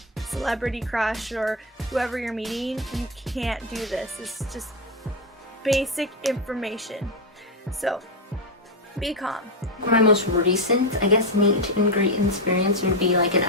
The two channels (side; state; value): both; normal; correlation 0.07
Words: celebrity crush or whoever you're meeting, you can't do this. It's just basic information. So be calm. My most recent, I guess, meet and greet experience would be an